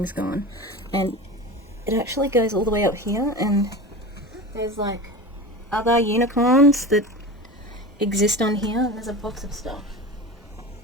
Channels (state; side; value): normal; both; correlation 0.30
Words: gone. And it actually goes all the way up here, and there's like other unicorns that exist on here. There's a box of stuff.